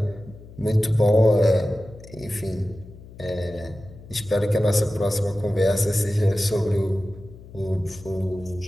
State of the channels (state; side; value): noise; left; hum, 18 dB below the sound